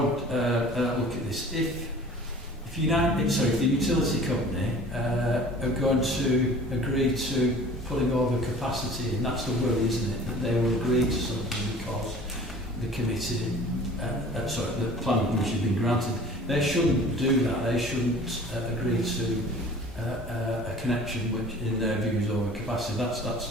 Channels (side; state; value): both; normal; correlation 0.45